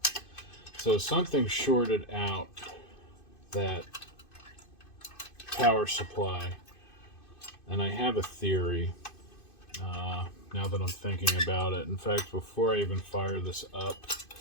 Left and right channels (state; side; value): late; right; 2.5 ms